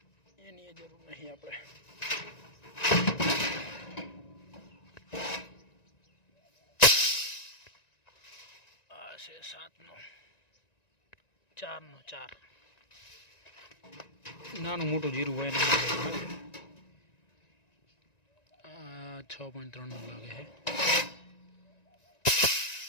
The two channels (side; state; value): right; late; 1.9 ms